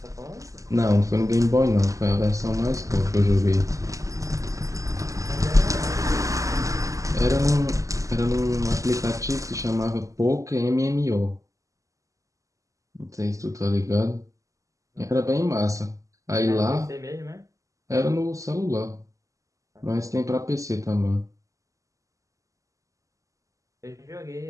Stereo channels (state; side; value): late; left; 0.16 ms